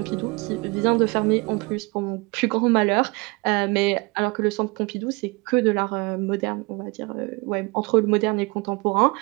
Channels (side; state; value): left; quieter; 27.6 dB